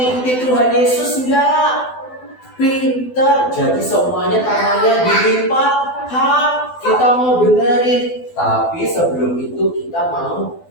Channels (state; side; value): late; right; 12 ms